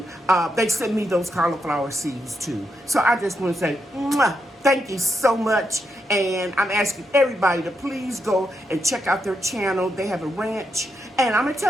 they sent me those cauliflower seeds too. So I just want to say, mwah, thank you so much. And I'm asking everybody to please go and check out their channel. They have a ranch. And I'm going to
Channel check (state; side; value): normal; both; correlation 0.82